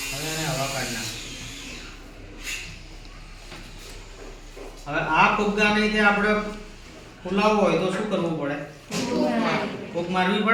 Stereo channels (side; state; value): both; identical; correlation 1.00